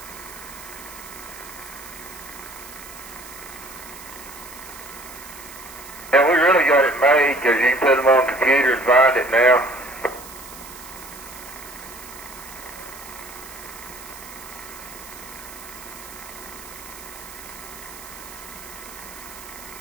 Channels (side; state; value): right; noise; hiss, 15 dB below the sound